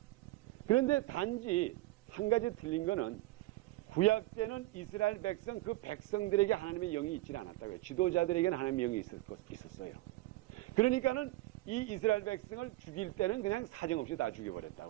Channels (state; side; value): quieter; left; 18.2 dB